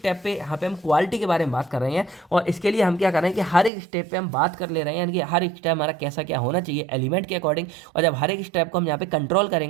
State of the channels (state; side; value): drops out; left; at 3.7 s